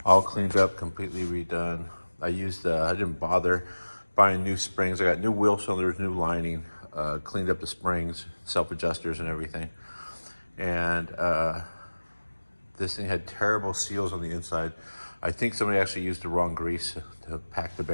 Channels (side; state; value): both; inverted; correlation -1.00